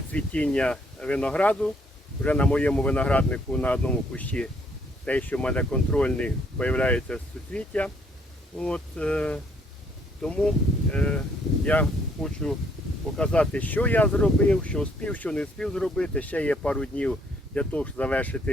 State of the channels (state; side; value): normal; both; correlation 0.67